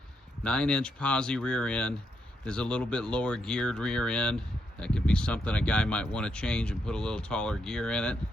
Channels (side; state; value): both; normal; correlation 0.79